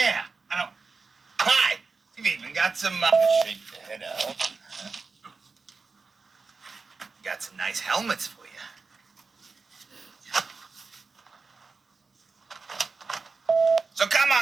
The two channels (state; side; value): quieter; left; 4.4 dB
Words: I don't. Hi. You've even got some. Shake the head out. Got some nice helmets for you. So come